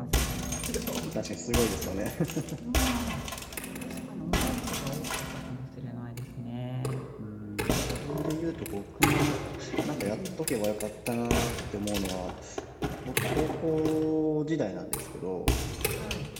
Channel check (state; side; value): identical; both; correlation 1.00